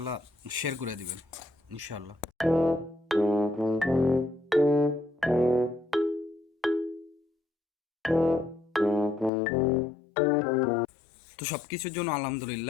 শেয়ার করে দিবেন ইনশাল্লাহ। তো সব কিছুর জন্য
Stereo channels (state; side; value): drops out; right; at 9.3 s